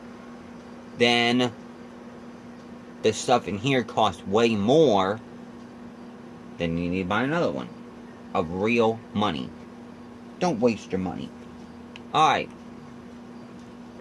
Then the stuff in here costs way more. Then you need to buy another one of real money. Don't waste your money. Alright.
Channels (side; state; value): both; identical; correlation 1.00